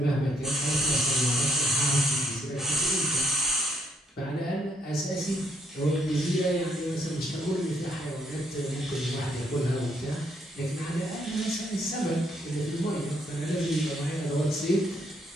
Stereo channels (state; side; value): normal; both; correlation 0.72